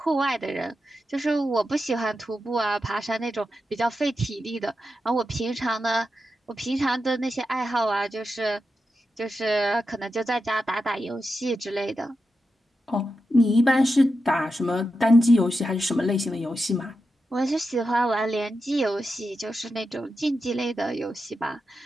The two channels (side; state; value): both; normal; correlation 0.89